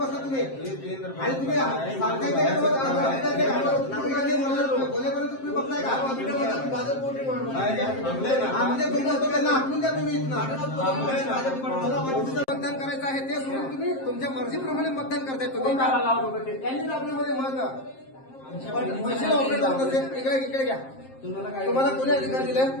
तुम्ही आणि तुम्ही बोलेपर्यंत तुम्ही बघताय का म्हणजे तुम्ही त्यांना आखून द्या तुम्ही मतदान करायचं आहे ते सोडून तुम्ही तुमच्या मर्जीप्रमाणे मतदान करताय तुम्ही त्यांनी आपल्यामध्ये मत मशीन ऑपरेटर असेल इकडे घ्या तुम्हाला कोणी अधिकार दिले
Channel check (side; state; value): right; late; 7.6 ms